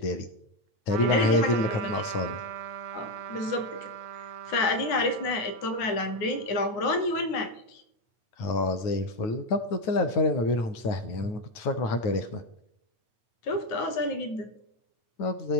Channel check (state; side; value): late; right; 9.3 ms